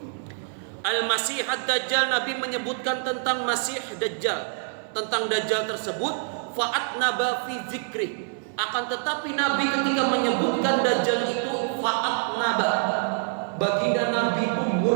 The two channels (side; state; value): left; silent; 58 dB below the other